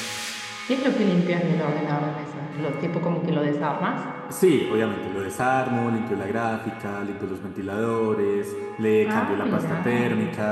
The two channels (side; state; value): both; identical; correlation 1.00